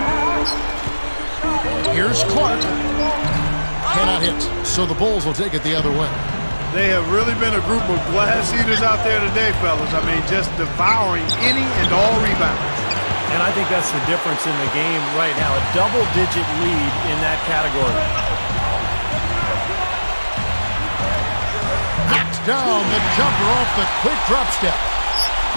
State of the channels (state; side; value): inverted; both; correlation -1.00